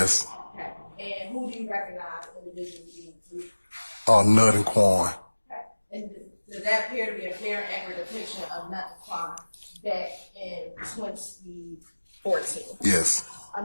Okay. And who do you recognize individually being Nut and Quan. Okay. And does that appear to be a fair and accurate depiction of Nut and Quan back in 2014? Yes.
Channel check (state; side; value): inverted; both; correlation -1.00